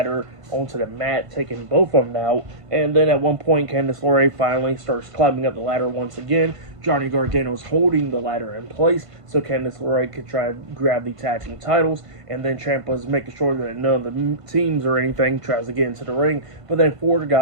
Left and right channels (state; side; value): late; left; 1.5 ms